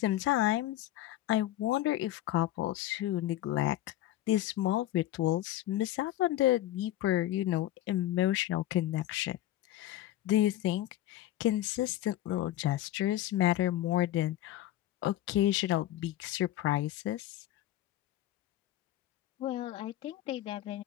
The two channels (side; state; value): right; quieter; 14.0 dB